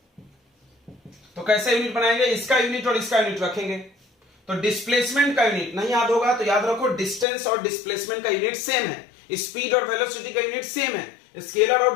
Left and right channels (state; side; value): drops out; right; at 7.2 s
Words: तो कैसे यूनिट बनाएंगे? इसका यूनिट और इसका यूनिट रखेंगे। तो डिस्प्लेसमेंट का यूनिट नहीं याद होगा तो याद रखो, डिस्टेंस और डिस्प्लेसमेंट का यूनिट सेम है, स्पीड और वेलोसिटी का यूनिट सेम है। स्केलर और